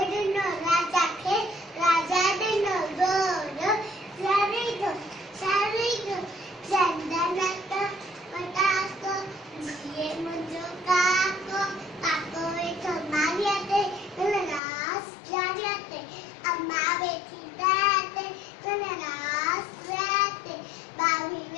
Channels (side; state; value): right; drops out; at 14.6 s